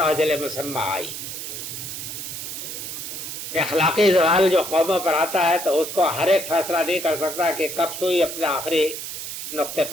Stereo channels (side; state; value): right; noise; hiss, 7 dB below the sound